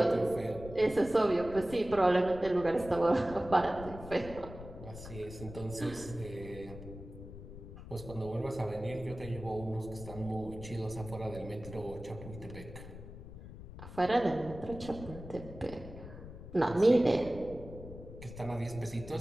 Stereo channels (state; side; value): noise; left; rumble, 13 dB below the sound